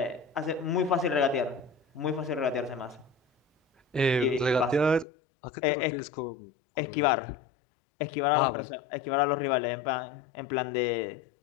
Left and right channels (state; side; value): drops out; right; at 5.1 s